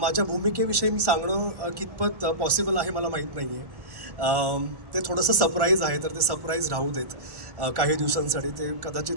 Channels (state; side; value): late; left; 1.1 ms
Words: भूमिकेविषयी मी सांगणं कितपत पॉसिबल आहे मला माहीत नाही आहे. ते थोडंसं सरप्राईज आहे, तर ते सरप्राईज राहू देत काही दिवसांसाठी. ते कदाचित